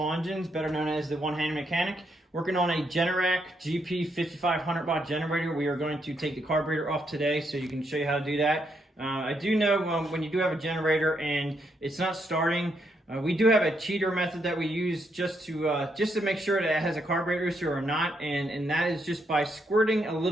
Engines, better known as the One-Handed Mechanic. Working on a Generac GP5500 watt generator. We are going to take the carburetor off today so you can show you how to do that. I do know when you do have a generator and it's not starting, we do have a cheater method that we use just to make sure that it has a carburetor issue or not, and that is just by squirting a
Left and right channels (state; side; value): normal; both; correlation 0.78